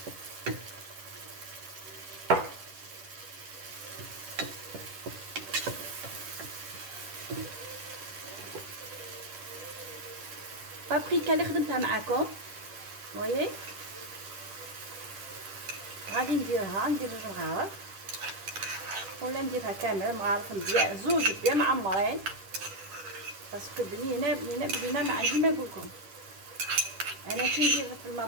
بابريكا اللي خدمتها معاكم وي غادي نديرها، ندير جوج مغارف ولا نديرها كامل مغارف مزيان زوج بيان معمرين باسكو بنينه ما عندي ما نقولكم. انا كي ندير في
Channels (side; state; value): left; late; 10 ms